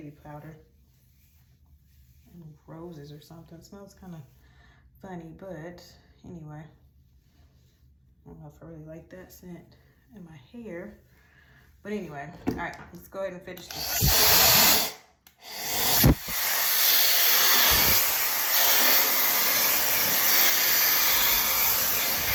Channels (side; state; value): both; identical; correlation 1.00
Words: powder. Roses or something. It smells kind of funny, but anyway, I don't know if I really like that scent in my hair, but anyway, all right, let's go ahead and finish this.